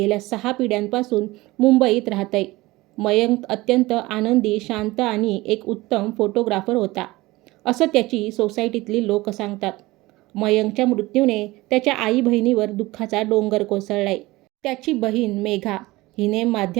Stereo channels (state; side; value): quieter; left; 20.0 dB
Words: 6 पिढ्यांपासून मुंबईत राहतंय. मयंक अत्यंत आनंदी, शांत आणि एक उत्तम फोटोग्राफर होता, असं त्याची सोसायटीतली लोक सांगतात. मयंकच्या मृत्यूने त्याच्या आई बहिणीवर दुःखाचा डोंगर कोसळलाय. त्याची बहीण मेघा हिने